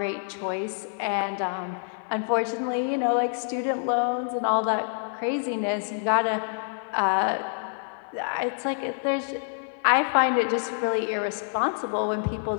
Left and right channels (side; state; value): right; silent; 60 dB below the other